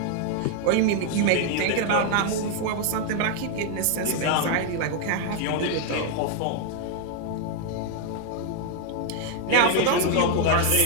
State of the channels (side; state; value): both; different; correlation 0.00